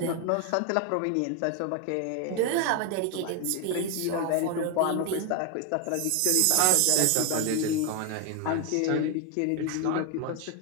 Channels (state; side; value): different; both; correlation 0.01